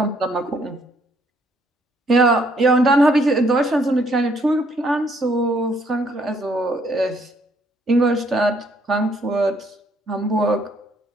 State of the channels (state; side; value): normal; both; correlation 0.67